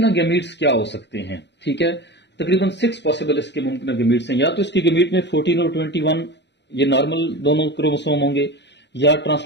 गैमीट्स क्या हो सकते हैं, ठीक है, तकरीबन 6 पॉसिबल इसके मुमकिन गैमीट्स हैं। या तो इसकी गैमीट में 14 और 21 ये नॉर्मल दोनों क्रोमोसोम होंगे, या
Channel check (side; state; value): right; late; 0.51 ms